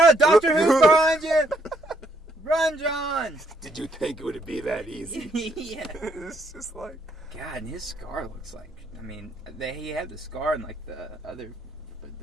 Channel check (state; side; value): normal; both; correlation 0.71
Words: Doctor Who's behind you. Run, John! Did you think it would be that easy? Yeah. It's just like... God, and his scar looks like... I mean, he had the scar in like the other... But